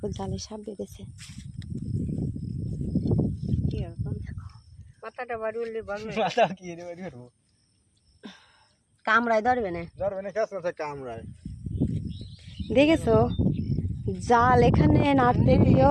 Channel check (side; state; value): both; identical; correlation 1.00